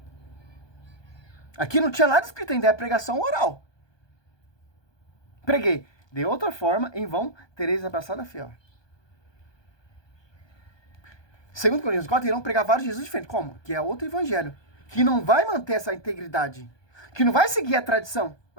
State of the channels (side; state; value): right; late; 1.2 ms